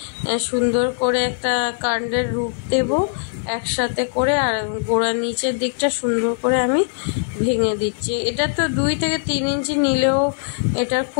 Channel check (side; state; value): right; silent; digital silence